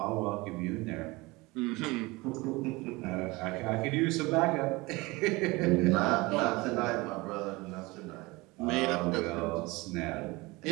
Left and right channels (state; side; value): quieter; left; 23.0 dB